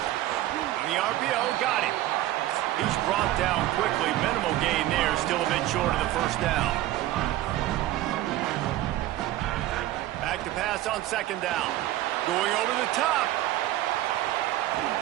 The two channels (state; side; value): quieter; left; 14.9 dB